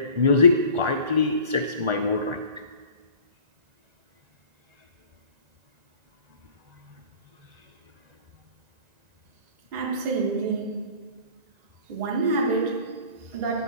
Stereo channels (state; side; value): late; left; 1.9 ms